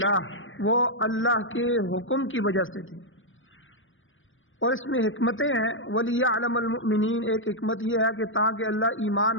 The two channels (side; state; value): right; late; 0.57 ms